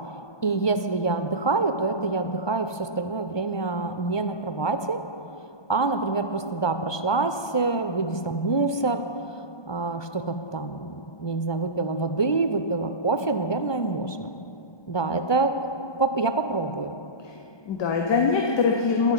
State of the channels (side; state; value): right; late; 1.2 ms